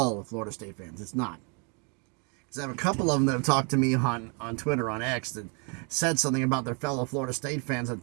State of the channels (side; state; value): left; quieter; 36.3 dB